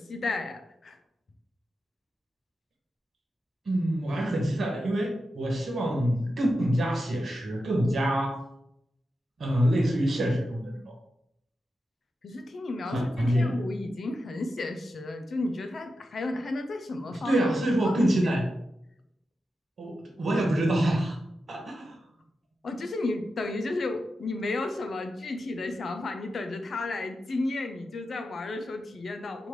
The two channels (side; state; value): both; normal; correlation 0.90